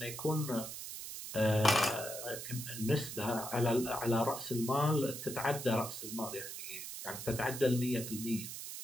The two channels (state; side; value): noise; right; hiss, 8 dB below the sound